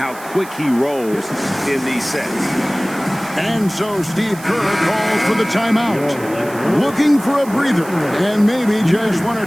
quick he rolls in these sets. And so Steve Kerr calls for the timeout. Looking for a breather and maybe just one or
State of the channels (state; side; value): noise; right; hiss, 18 dB below the sound